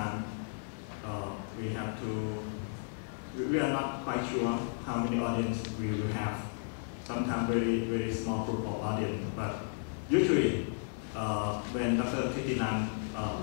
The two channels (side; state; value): right; silent; digital silence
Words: we are not quite sure how many audience we will have. Sometimes very, very small group of audience, but usually when Dr. Thitinan